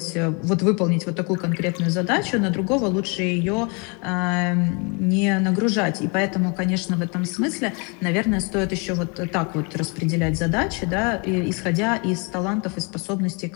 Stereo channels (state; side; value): quieter; right; 32.5 dB